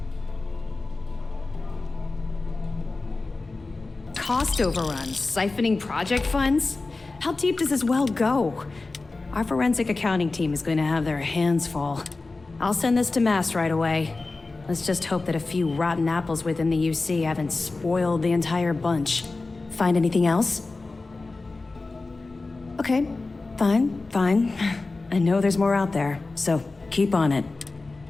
Cost overruns, siphoning project funds? How deep does this well go? Our forensic accounting team is going to have their hands full. I'll send this to Mass right away. Let's just hope that a few rotten apples within the UC haven't spoiled the entire bunch. Find anything else? Okay, fine. I know there's more out there, so keep on it.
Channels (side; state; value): right; quieter; 3.5 dB